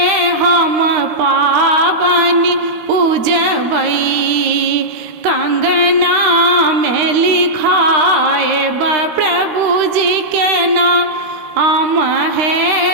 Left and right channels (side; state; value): left; late; 13 ms